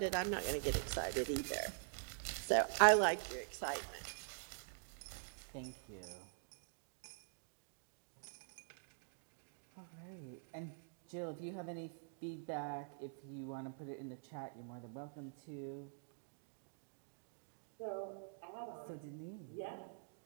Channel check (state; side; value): silent; left; digital silence